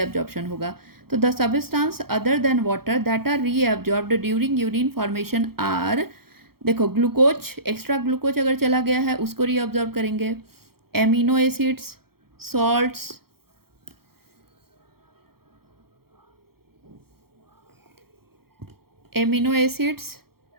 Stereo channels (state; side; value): late; left; 0.94 ms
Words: होगा। तो the substance other than water that are reabsorbed during urine formation are, देखो ग्लूकोज, एक्स्ट्रा ग्लूकोज अगर चला गया है उसको रीअब्जॉर्ब करेंगे, amino acids, salts, amino acids,